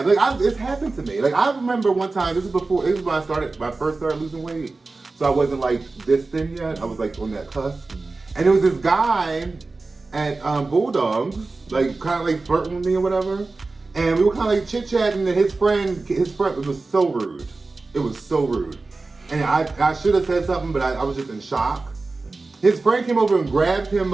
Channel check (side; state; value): left; quieter; 3.6 dB